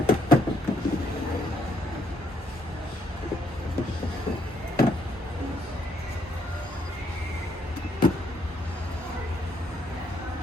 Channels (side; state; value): both; normal; correlation 0.72